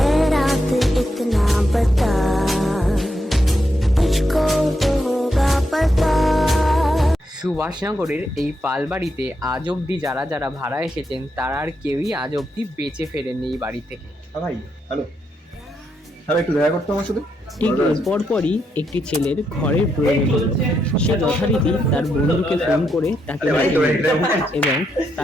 रात इतना बता, तुझको तो होगा पता। সুভাষনগরের এই পালবাড়িতে আজ অবধি যারা যারা ভাড়া এসেছেন তারা আর কেউই আজ অবধি বেঁচে ফেরেননি এই বাড়ি থেকে। ভাই হ্যালো, হ্যালো, একটু দেখা করতে আমার সাথে। ঠিক পরপরই একটি ছেলের ঘরের প্রয়োজন হলো। সে যথারীতি তার বন্ধুকে ফোন করে তাকে এবং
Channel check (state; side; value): normal; both; correlation 0.81